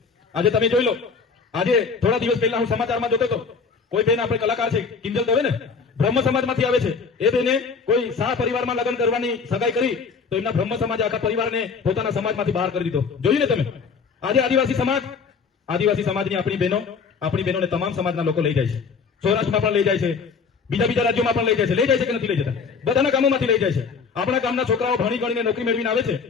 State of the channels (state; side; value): quieter; right; 5.4 dB